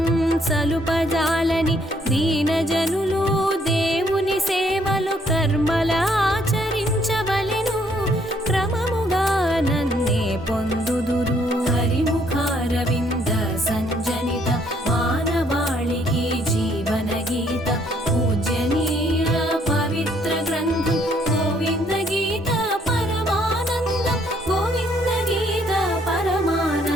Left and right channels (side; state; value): both; normal; correlation 0.67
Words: సలుపజాలని దీనజనులు దేవుని సేవలు కర్మల ఆచరించవలెను క్రమముగా నన్నే పొందుదురు హరిముఖారవింద సంజనిత మానవాళికి జీవన గీత పూజనీయ పవిత్ర గ్రంథం గోవింద గీత పరమానందం గోవింద గీత